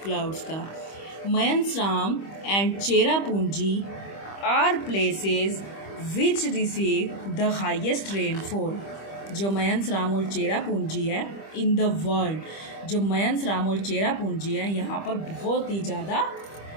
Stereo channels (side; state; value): right; late; 25 ms